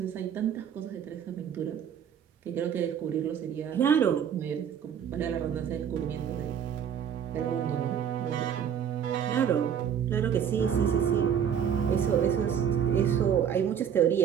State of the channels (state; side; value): quieter; left; 8.5 dB